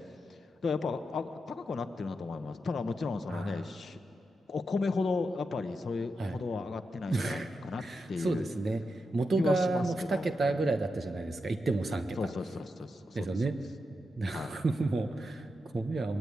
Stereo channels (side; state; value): both; normal; correlation 0.87